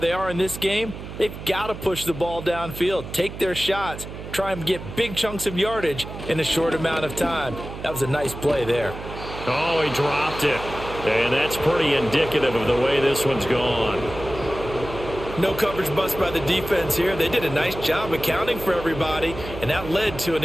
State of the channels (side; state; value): right; noise; hum, 11 dB below the sound